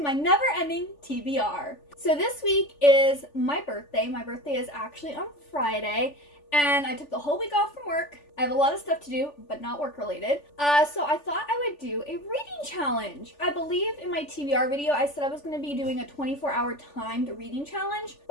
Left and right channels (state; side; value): late; right; 3.4 ms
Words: my never-ending TBR. So this week is my birthday. My birthday is actually on Friday, and I took the whole week off from work. I have a lot of stuff to do, but not work-related. So I thought I would do a reading challenge. I believe in my TBR video, I said I was going to be doing a 24-hour timed reading challenge,